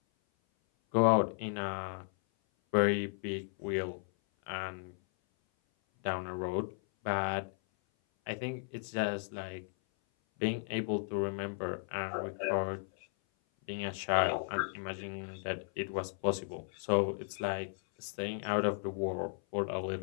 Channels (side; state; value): right; silent; 54 dB below the other